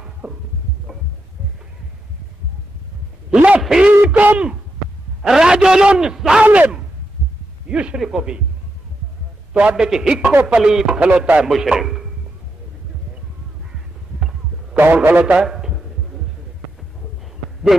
لفیکم رجل ظالم یشرک بھی تو آڈے کی ہکو پلیت کھلوتا ہے مشرک کون کھلوتا ہے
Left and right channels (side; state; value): both; normal; correlation 0.85